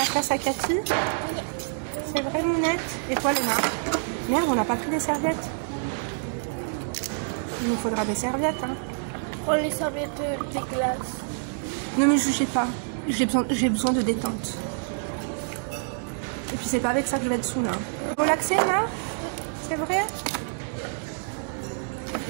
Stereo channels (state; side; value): silent; left; digital silence